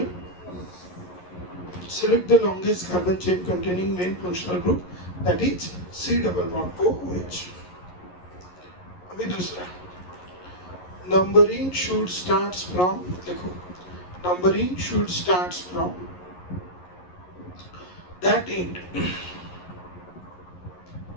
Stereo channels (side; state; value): right; late; 11 ms